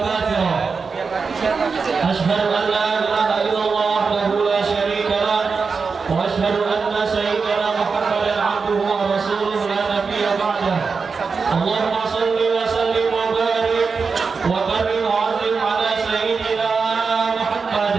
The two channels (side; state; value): left; quieter; 5.0 dB